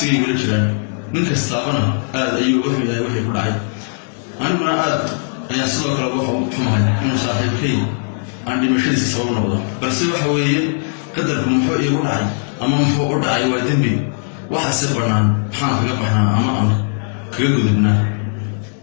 igala jiraan ninkaas taabana aad ayuu u xumahay wixii ku dhacay aniguna aad ayaan sidoo kale wax u xumahay inuu saaxiibkay aan dhimashadiisa sabab noqdo balse waxa weeye qadarku muxuu iigu dhacay ama muxuu u dhacay waa dembi waxa si banaan maxaan kaga baxnaa ama aan kaga gudubnaa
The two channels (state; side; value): silent; right; digital silence